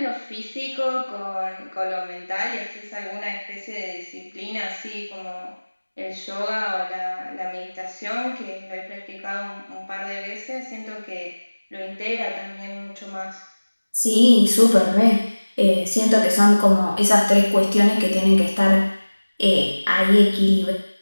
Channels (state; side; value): inverted; both; correlation -1.00